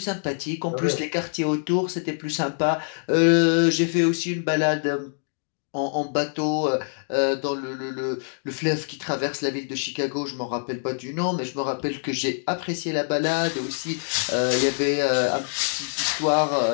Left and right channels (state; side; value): silent; right; digital silence